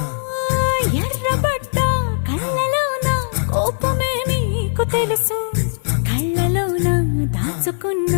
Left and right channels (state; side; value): silent; right; digital silence